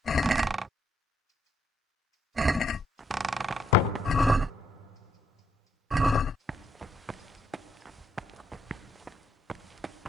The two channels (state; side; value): normal; both; correlation 0.74